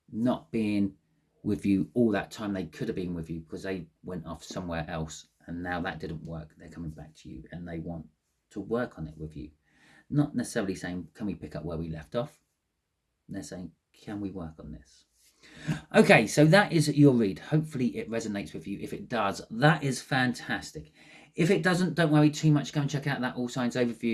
not being with you all that time they could have been with you because they went off somewhere else and now that didn't work. They're coming back to you and they want to work on it with you. Not necessarily saying, can we pick up where we left off? They're saying, can we work on this? Okay, so that is your read. Hopefully it resonates with you. If it does, that is fantastic. If it doesn't, don't worry too much. Go and check out that All Signs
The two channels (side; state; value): both; identical; correlation 1.00